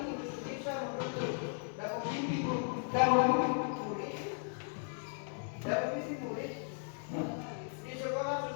mimpi utama murid dan mimpi murid di sekolah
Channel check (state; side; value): silent; right; 54 dB below the other